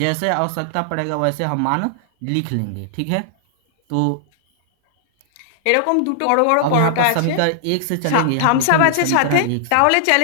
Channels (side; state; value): both; different; correlation -0.01